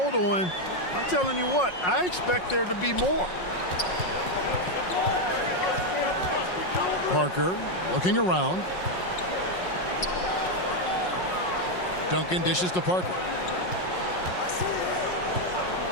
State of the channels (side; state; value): right; late; 5.5 ms